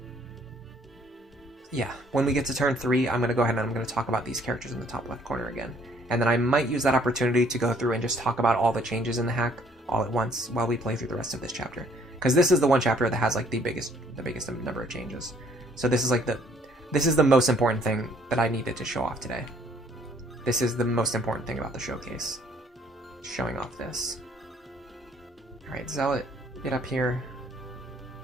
yeah, when we get to turn 3, I'm going to go ahead and I'm going to talk about these characters in the top left corner again. And then I might use that opportunity to go through and just talk about all the changes in the hack all at once while we play through the rest of this chapter. Because this is the one chapter that has like the biggest number of changes. So this is like this is the most important thing that I needed to show off today. This is the most important thing about the showcase. Showing off this. Alright, Zealot, get up here.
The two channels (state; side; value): normal; both; correlation 0.62